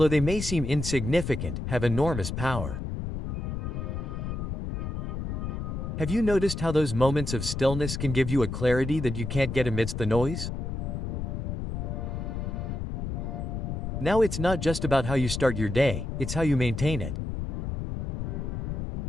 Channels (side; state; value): left; noise; rumble, 4 dB below the sound